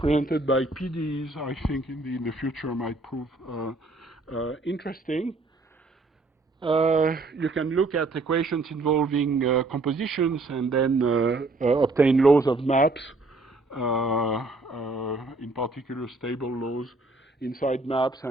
by PDEs, I think in the future might prove interesting. You can look at equations involving compositions and then obtain laws of maps, in particular stable laws inside maps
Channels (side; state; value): left; quieter; 3.1 dB